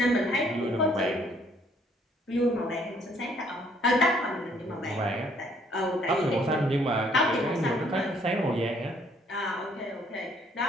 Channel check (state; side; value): normal; both; correlation 0.64